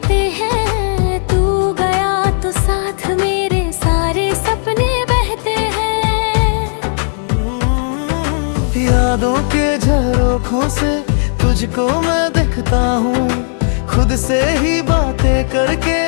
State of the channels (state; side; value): silent; right; digital silence